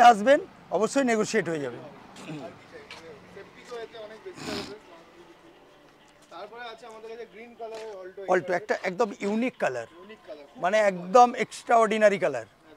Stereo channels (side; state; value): both; identical; correlation 1.00